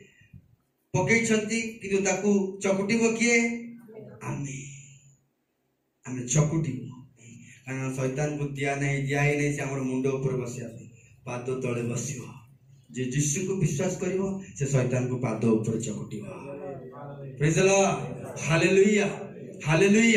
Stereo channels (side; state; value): both; identical; correlation 1.00